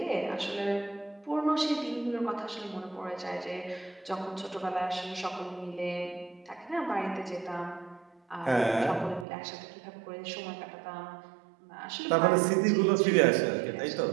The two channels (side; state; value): left; drops out; at 9.2 s